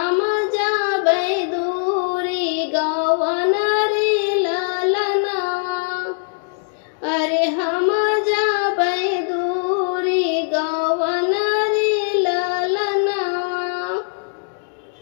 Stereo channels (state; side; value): silent; right; digital silence